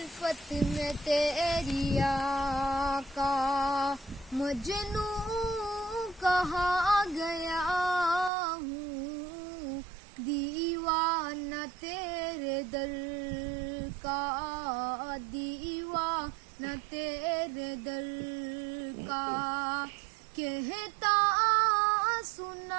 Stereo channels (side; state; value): left; drops out; at 8.3 s